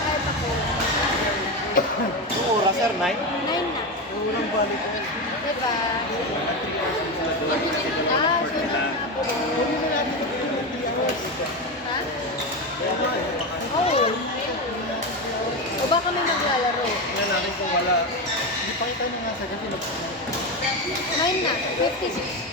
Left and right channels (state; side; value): normal; both; correlation 0.16